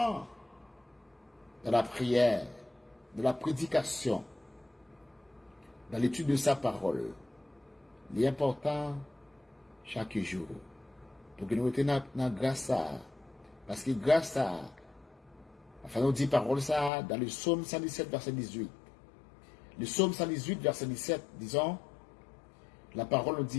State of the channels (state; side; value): drops out; right; at 16.9 s